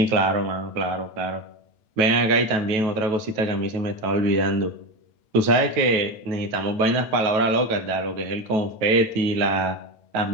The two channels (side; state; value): left; late; 9.3 ms